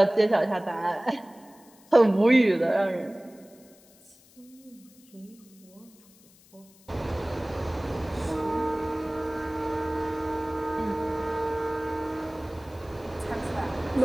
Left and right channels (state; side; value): noise; left; hiss, 27 dB below the sound